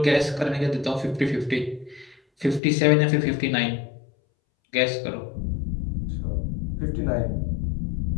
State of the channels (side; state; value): right; drops out; at 2.6 s